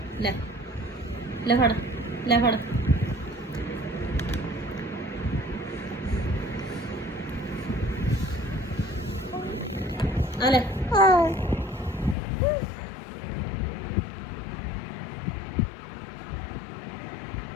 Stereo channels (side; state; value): right; drops out; at 12.2 s